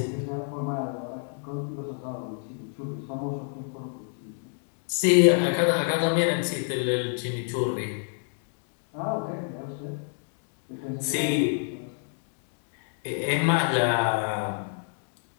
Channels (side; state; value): right; silent; 59 dB below the other